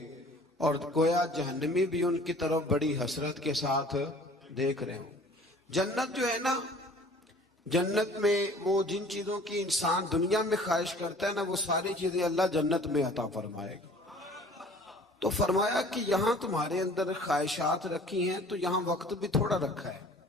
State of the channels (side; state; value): both; normal; correlation 0.49